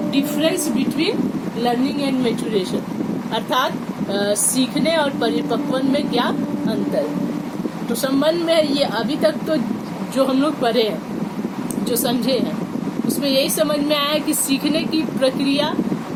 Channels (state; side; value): identical; both; correlation 1.00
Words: difference between learning and maturation, अर्थात सीखने और परिपक्वन में क्या अंतर है। तो संबंध में ये अभी तक तो जो हम लोग पढ़े हैं, जो समझे हैं, उसमें यही समझ में आया कि सीखने की प्रक्रिया